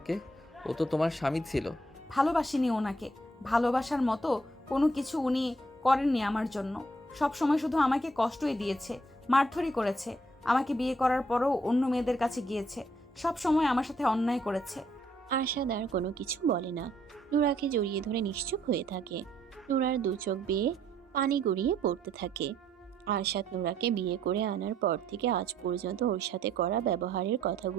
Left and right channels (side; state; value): both; normal; correlation 0.69